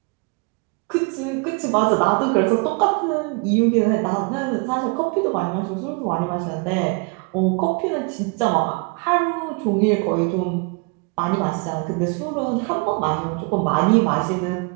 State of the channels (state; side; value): quieter; left; 32.7 dB